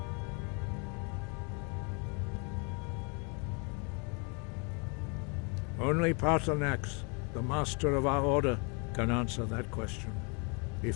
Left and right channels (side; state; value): right; quieter; 35.0 dB